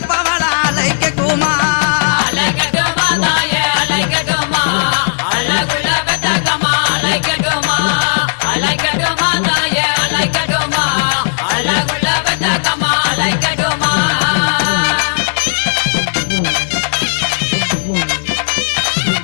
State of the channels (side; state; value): right; silent; 67 dB below the other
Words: அலைக்கட்டுமா அலைக்கட்டுமா தாய அலைக்கட்டுமா அழகுள்ள பெத்தாக்கம்மா அலைக்கட்டுமா அலைக்கட்டுமா தாய அலைக்கட்டுமா அழகுள்ள பெத்தாக்கம்மா அலைக்கட்டுமா